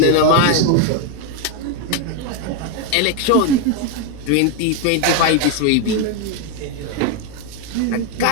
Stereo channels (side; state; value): both; different; correlation 0.01